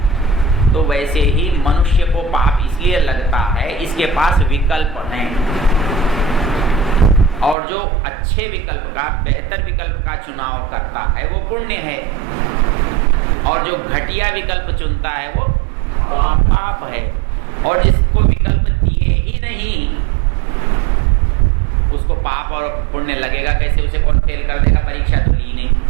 तो वैसे ही मनुष्य को पाप इसलिए लगता है इसके पास विकल्प हैं, और जो अच्छे विकल्प का, बेहतर विकल्प का चुनाव करता है वो पुण्य है, और जो घटिया विकल्प चुनता है वो पाप है। और जिसको विकल्प दिए ही नहीं उसको पाप और पुण्य लगेगा कैसे? उसे कौन फेल कर देगा? परीक्षा तो ली नहीं,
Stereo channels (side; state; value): left; drops out; at 7.6 s